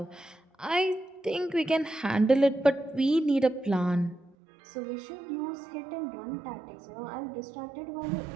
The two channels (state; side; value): drops out; left; at 4.4 s